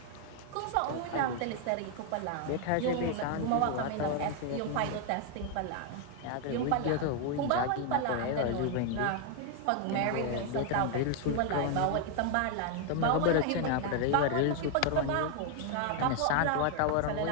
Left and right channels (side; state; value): both; different; correlation 0.01